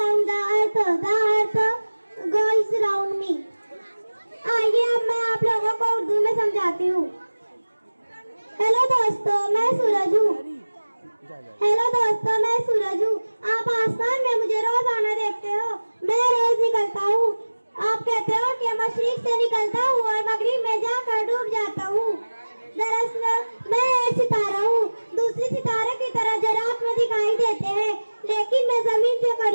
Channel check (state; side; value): inverted; both; correlation -1.00